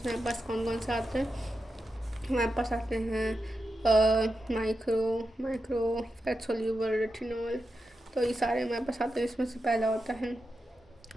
पास कौन कौन से आते हैं, हमारे पास आते हैं माइक्रो फैट सोल्यूबल रेटिनॉल, तो ये सारे हमारे पास आते हैं। इसमें से पहला होता है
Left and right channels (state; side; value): normal; both; correlation 0.89